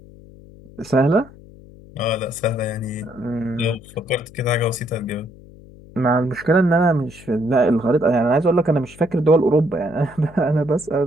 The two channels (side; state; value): left; noise; hum, 21 dB below the sound